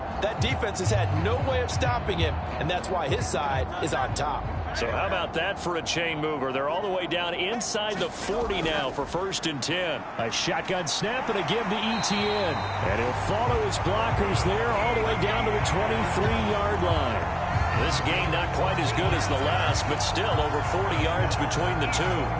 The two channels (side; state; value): both; identical; correlation 1.00